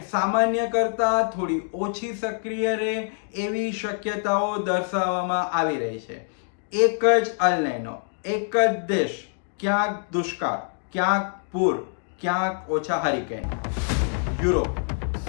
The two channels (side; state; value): right; silent; 62 dB below the other